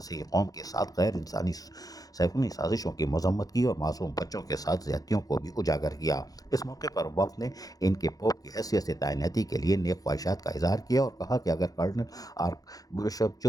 قوم کے ساتھ غیر انسانی سیکولر سازشوں کی مذمت کی اور معصوم بچوں کے ساتھ زیادتیوں کو بھی اجاگر کیا۔ اس موقع پر وفد نے ان کے پوپ کی حیثیت سے تعیناتی کے لیے نیک خواہشات کا اظہار کیا اور کہا کہ اگر cardinal archbishop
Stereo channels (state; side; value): late; right; 0.18 ms